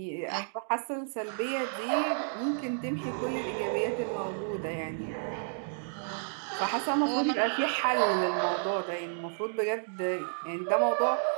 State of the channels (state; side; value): silent; left; digital silence